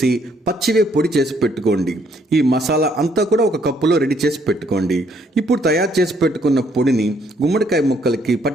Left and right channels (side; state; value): both; normal; correlation 0.68